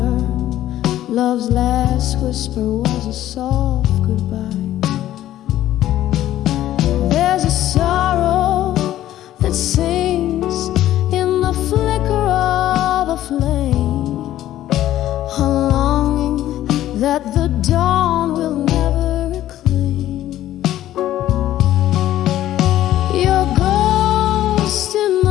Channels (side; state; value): right; quieter; 13.3 dB